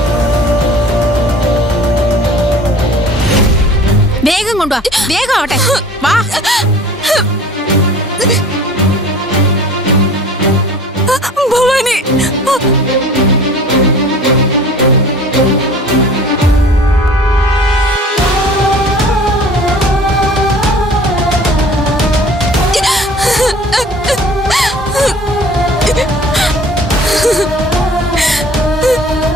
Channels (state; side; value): normal; both; correlation 0.46